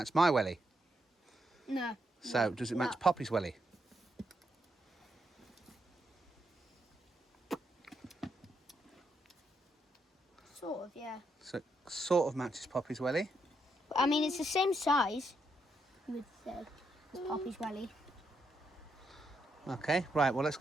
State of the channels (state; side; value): normal; both; correlation 0.80